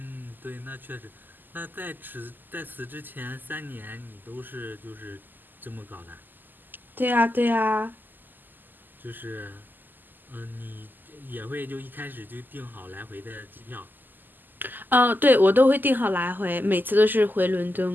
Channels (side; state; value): left; late; 0.089 ms